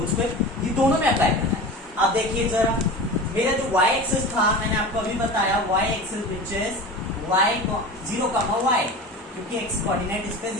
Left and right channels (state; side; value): normal; both; correlation 0.32